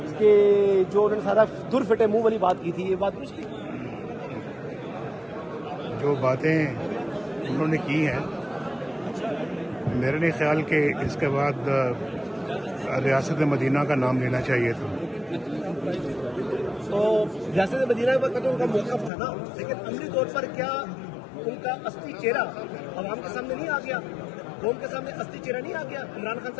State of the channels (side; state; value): right; drops out; at 19.1 s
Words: کہ جو انہوں نے سارا در پھٹے منہ والی بات کی تھی، یہ بات درست تھی؟ جو باتیں انہوں نے کی ہیں میرے نہیں خیال کہ اس کے بعد ریاست مدینہ کا نام لینا چاہیے تھا. تو ریاست مدینہ پر تو ان کا موقف تھا نا، لیکن عملی طور پر کیا ان کا اصلی چہرہ عوام کے سامنے نہیں آ گیا؟ قوم کے سامنے اصلی چہرہ نہیں آ گیا؟ عمران خان